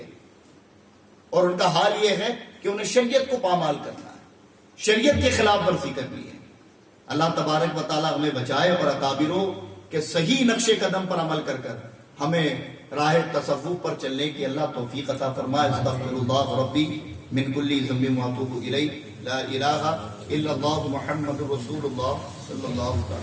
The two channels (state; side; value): identical; both; correlation 1.00